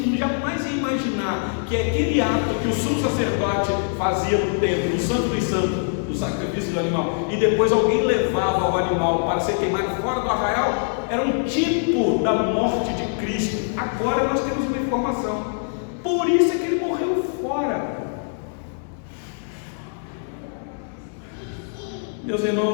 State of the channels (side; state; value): right; silent; digital silence